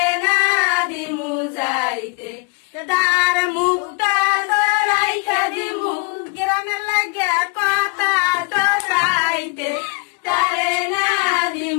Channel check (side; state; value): right; quieter; 30.1 dB